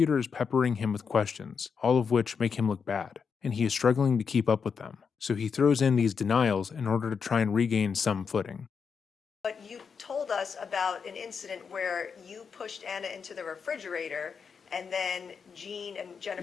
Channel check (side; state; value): right; quieter; 6.0 dB